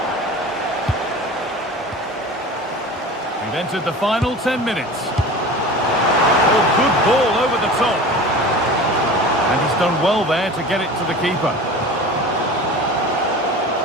We've entered the final 10 minutes. Oh, good ball over the top. And he's done well there to get it to the keeper.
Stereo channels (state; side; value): normal; both; correlation 0.36